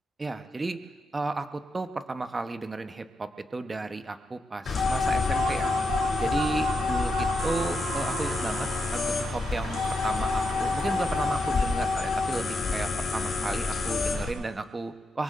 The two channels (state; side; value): normal; both; correlation 0.84